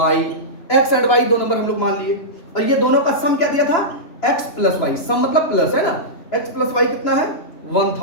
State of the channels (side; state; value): right; late; 3.0 ms